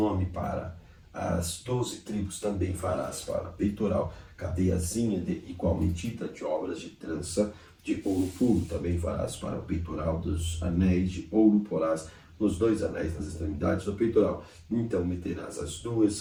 Para as 12 tribos também farás para peitoral cadeiazinha de igual medida de obras de trança de ouro puro. Também farás para o peitoral dos anéis de ouro, porás nos 2 anéis nas extremidades do peitoral. Então meterás as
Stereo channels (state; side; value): identical; both; correlation 1.00